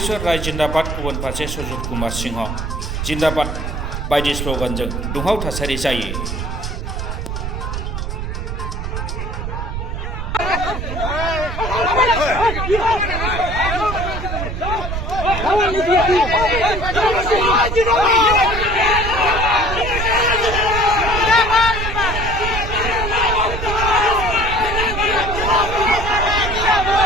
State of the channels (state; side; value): noise; right; rumble, 4 dB below the sound